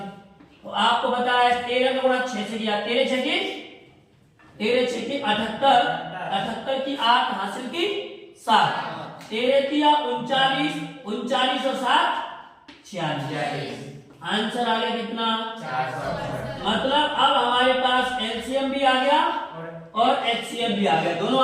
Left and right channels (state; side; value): identical; both; correlation 1.00